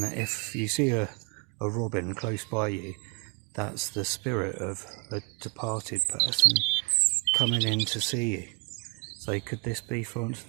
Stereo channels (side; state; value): left; quieter; 36.1 dB